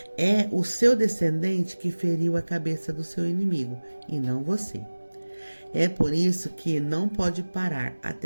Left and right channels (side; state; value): both; inverted; correlation -1.00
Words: é o seu descendente que feriu a cabeça do seu inimigo e não você. É por isso que não pode parar